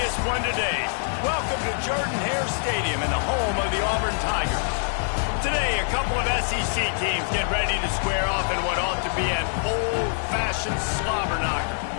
one today. Welcome to Jordan-Hare Stadium and the home of the Auburn Tigers. Today, a couple of SEC teams get ready to square off in what ought to be an old-fashioned slobber knocker.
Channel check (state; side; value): silent; right; 56 dB below the other